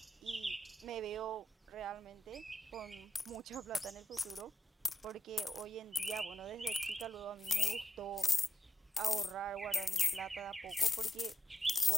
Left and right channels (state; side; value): normal; both; correlation 0.87